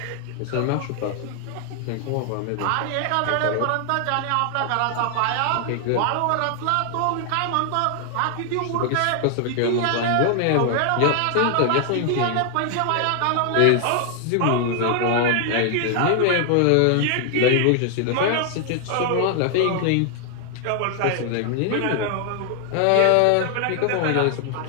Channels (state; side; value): different; both; correlation 0.00